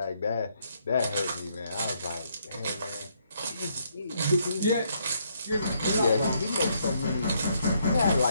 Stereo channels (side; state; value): both; inverted; correlation -0.72